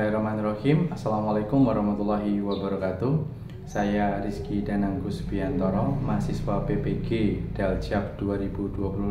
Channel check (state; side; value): identical; both; correlation 1.00